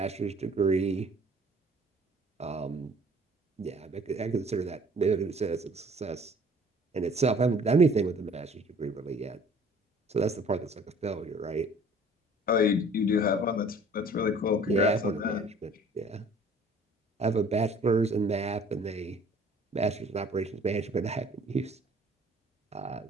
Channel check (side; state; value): both; normal; correlation 0.53